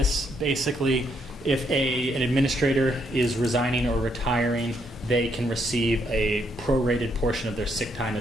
basically, if an administrator is resigning or retiring, they can receive a prorated portion of their sick time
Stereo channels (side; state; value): both; normal; correlation 0.74